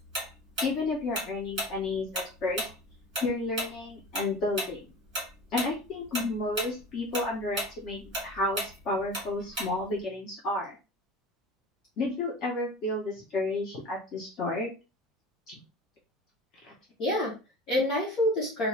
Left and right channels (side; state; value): both; normal; correlation 0.36